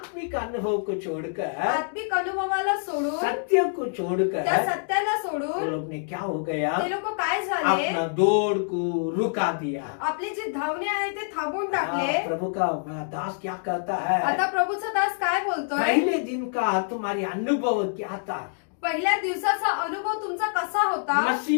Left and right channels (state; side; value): silent; right; digital silence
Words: अनुभव को छोड़कर, आत्मिक अनुभवाला सोडून, सत्य को त्या छोड़कर सत्याला वो सोडून लोग ने क्या हो गया, ते लोक काय झाले, अपना दौड़ को रुका दिया। आपले जे धावणे आहे ते थांबवून टाकले. हाँ, प्रभु का दास क्या कहता है? आता प्रभूचा दास काय बोलतोय? पहले दिन का तुम्हारी अनुभव क्या था? पहिल्या दिवसाचा अनुभव तुमचा कसा होता?